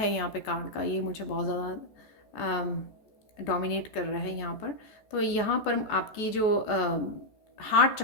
यहाँ पे कार्ड का, ये मुझे बहुत ज़्यादा डोमिनेट कर रहा है यहाँ पर। तो यहाँ पर आपकी जो हार्ट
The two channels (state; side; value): late; right; 14 ms